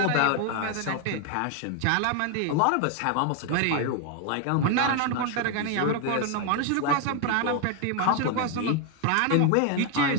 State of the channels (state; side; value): different; both; correlation 0.01